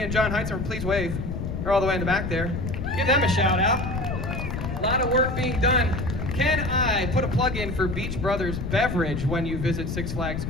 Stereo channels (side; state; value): left; noise; rumble, 4 dB below the sound